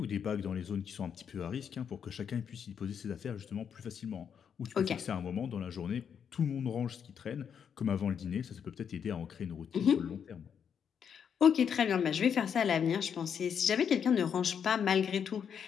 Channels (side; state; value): right; quieter; 7.6 dB